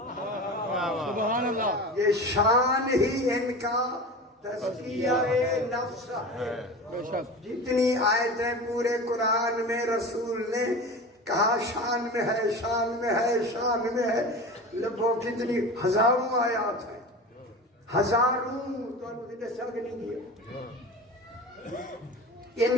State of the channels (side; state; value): both; normal; correlation 0.31